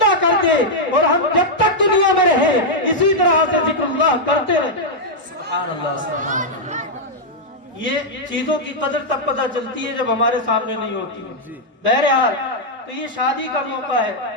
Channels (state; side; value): normal; both; correlation -0.03